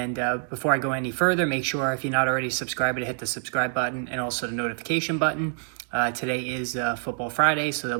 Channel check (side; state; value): left; silent; digital silence